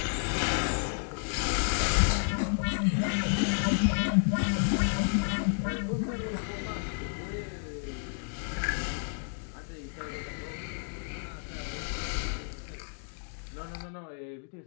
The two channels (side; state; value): right; silent; digital silence